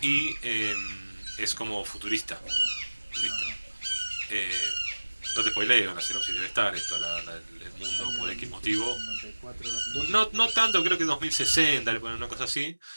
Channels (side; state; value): both; inverted; correlation -1.00